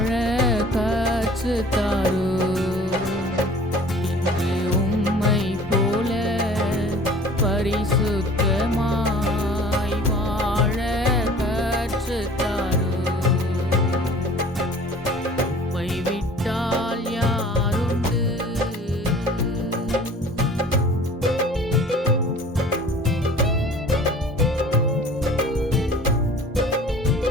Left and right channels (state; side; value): normal; both; correlation 0.47